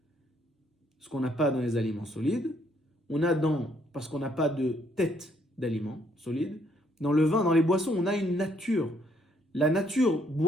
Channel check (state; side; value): normal; both; correlation 0.69